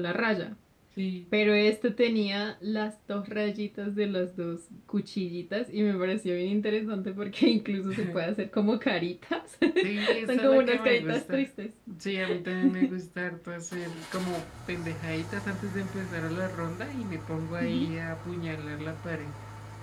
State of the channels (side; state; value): both; identical; correlation 1.00